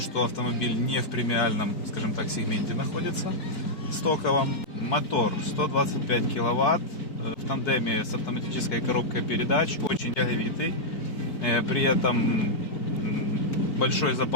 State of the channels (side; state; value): right; late; 4.6 ms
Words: автомобиль не в премиальном, скажем так, сегменте находится, стоковом. Мотор 125 киловатт, в тандеме с автоматической коробкой передач, очень тяговитый, при этом большой